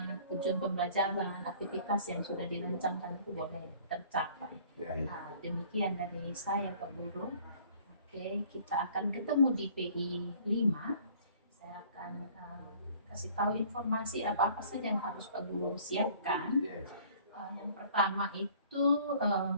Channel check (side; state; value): both; inverted; correlation -0.53